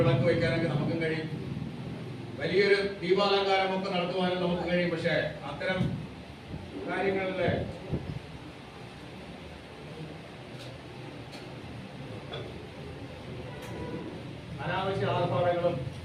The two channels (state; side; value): identical; both; correlation 1.00